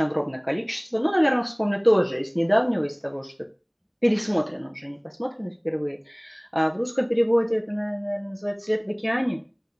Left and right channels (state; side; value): identical; both; correlation 1.00